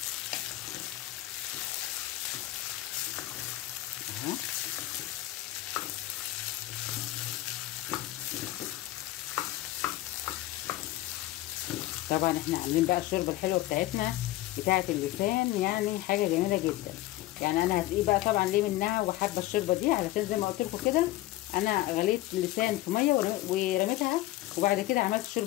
اهو طبعا احنا عاملين بقى الشوربه الحلوه بتاعتنا بتاعه اللسان، يعني حاجه جميله جدا. يعني انا هدقيه بقى طبعا ليه منها وحابه الشوربه دي، علشان زي ما قلت لكم كده انا غليت اللسان في ميه ورميتها، وبعد كده عملت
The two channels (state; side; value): quieter; right; 16.3 dB